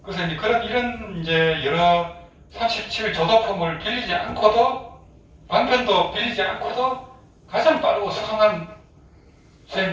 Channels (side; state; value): both; identical; correlation 1.00